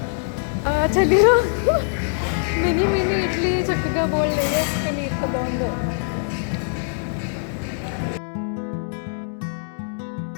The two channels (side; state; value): right; silent; digital silence